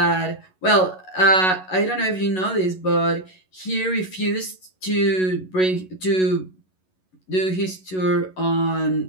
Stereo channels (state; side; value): late; right; 11 ms